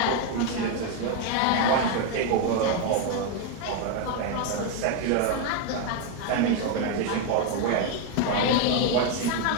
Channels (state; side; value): different; both; correlation 0.01